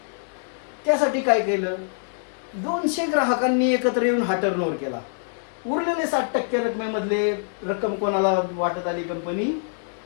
त्यासाठी काय केलं? 200 ग्राहकांनी एकत्र येऊन हा टर्नओव्हर केला. उरलेले 60% रकमेमधले रक्कम कोणाला वाटत आली? कंपनी.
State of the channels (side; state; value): right; silent; 62 dB below the other